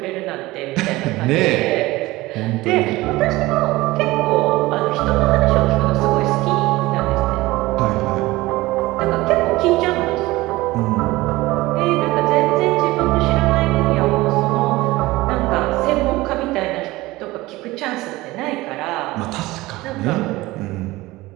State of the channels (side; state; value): left; quieter; 19.5 dB